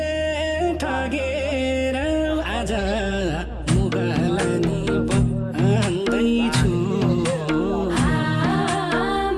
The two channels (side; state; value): both; identical; correlation 1.00